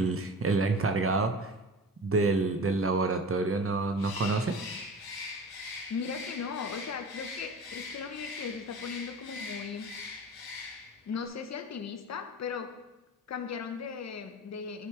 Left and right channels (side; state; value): both; normal; correlation 0.36